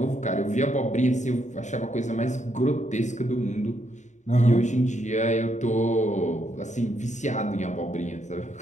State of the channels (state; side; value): late; right; 0.35 ms